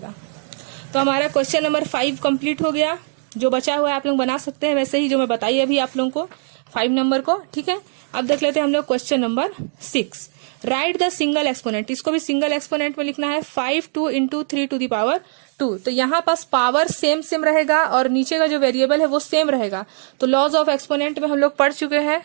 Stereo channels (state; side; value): silent; left; 58 dB below the other